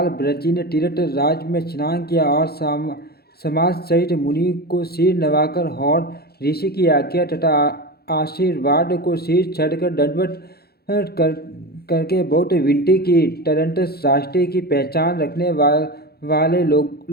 ब्रजी ने तीर्थ राज में स्नान किया और समाज सहित मुनि को सिर नवाकर और ऋषि की आज्ञा तथा आशीर्वाद को सिर चढ़कर दंडवत करके बहुत विनती की। तदनंतर राष्ट्र की पहचान रखने वाले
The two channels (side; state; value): right; late; 0.46 ms